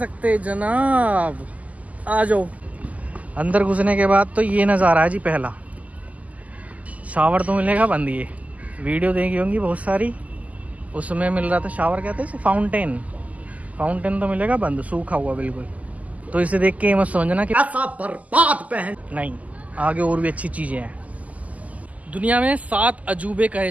जनाब। आ जाओ। अंदर घुसने के बाद तो ये नज़ारा है जी। पहला शावर तो मिलेगा बंद। ये वीडियो देखी होंगी बहुत सारी, उसमें मिल रहा था शावर, कहते हैं फाउंटेन। फाउंटेन तो मिलेगा बंद, सूखा हुआ बिल्कुल। तो इसे देख के मत समझना कि ऐसा बर्बाद पहन नहीं, आगे और भी अच्छी चीजें हैं। दुनिया में 7 अजूबे कहे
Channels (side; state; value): left; late; 0.074 ms